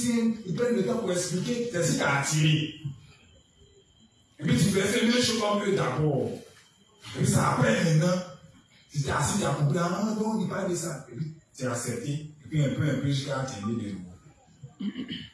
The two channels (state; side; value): identical; both; correlation 1.00